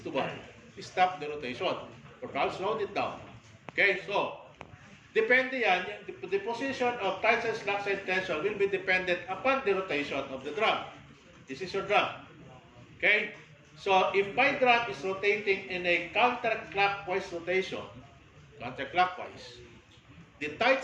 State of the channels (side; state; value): both; identical; correlation 1.00